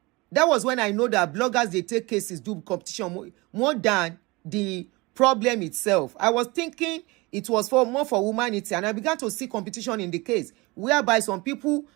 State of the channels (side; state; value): left; quieter; 24.1 dB